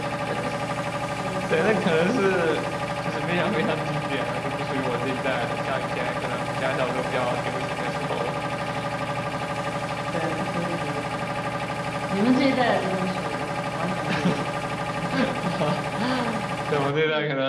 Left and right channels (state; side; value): identical; both; correlation 1.00